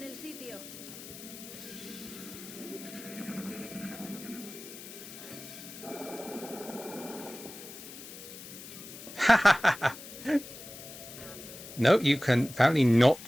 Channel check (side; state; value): left; noise; hiss, 14 dB below the sound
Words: el sitio. No, you can apparently not